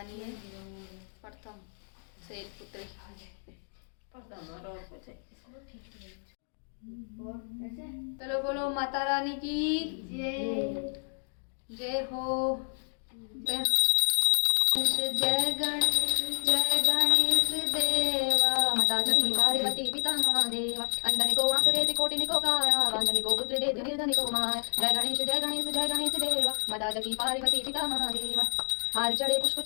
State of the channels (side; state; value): right; silent; 58 dB below the other